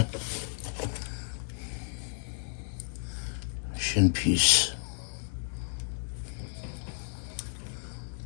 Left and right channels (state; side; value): silent; right; digital silence